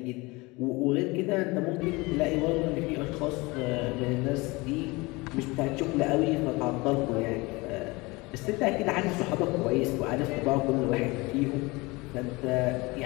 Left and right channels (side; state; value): right; quieter; 24.0 dB